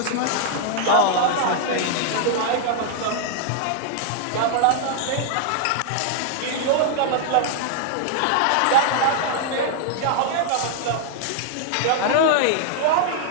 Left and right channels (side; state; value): both; different; correlation -0.01